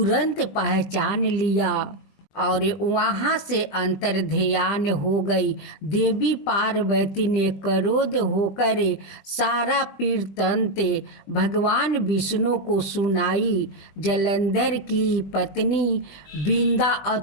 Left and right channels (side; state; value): right; late; 20 ms